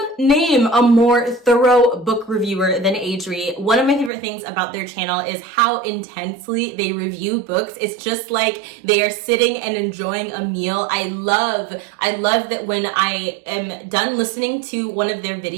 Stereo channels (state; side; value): drops out; left; at 4.1 s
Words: name a more thorough book reviewer than Adri. One of my favorite things about their channel is how intensely they review books. It's just like they are sitting and enjoying a meal. I love that when I am done listening to one of their